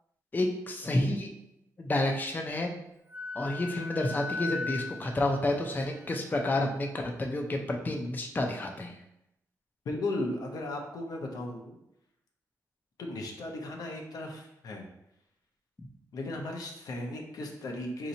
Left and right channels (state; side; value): normal; both; correlation 0.81